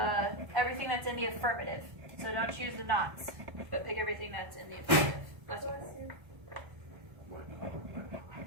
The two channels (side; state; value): left; late; 1.3 ms